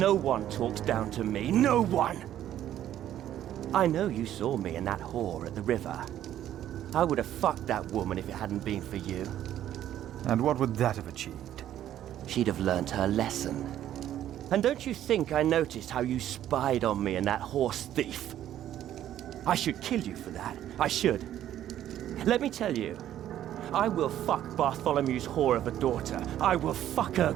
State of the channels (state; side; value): quieter; left; 11.7 dB